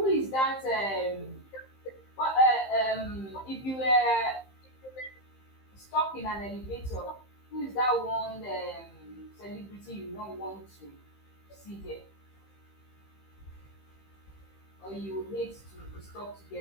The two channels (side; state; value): right; late; 15 ms